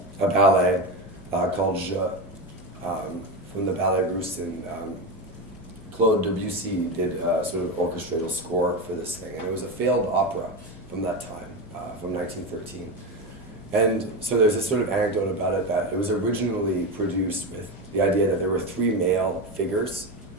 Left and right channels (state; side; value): normal; both; correlation 0.17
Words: a ballet called Je, from the Ballet Russe, and Claude Debussy did a sort of orchestral score for this thing, and it was a failed opera from that time, from 1913. And so there's this sort of anecdote about it that it was originally produced with the idea that there were 3 male figures